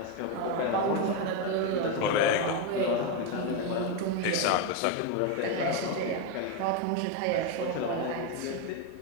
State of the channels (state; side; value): different; both; correlation 0.02